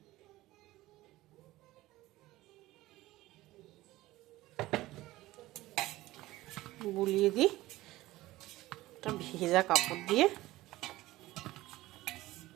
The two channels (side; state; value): left; quieter; 17.4 dB